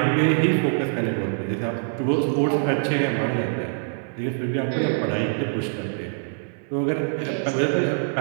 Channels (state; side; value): silent; left; 62 dB below the other